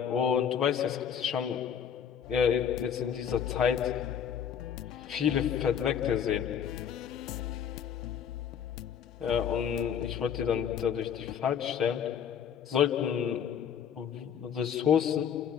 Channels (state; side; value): quieter; right; 8.2 dB